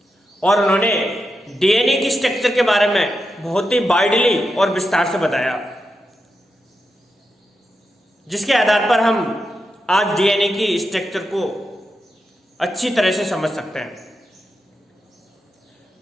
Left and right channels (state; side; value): normal; both; correlation 0.87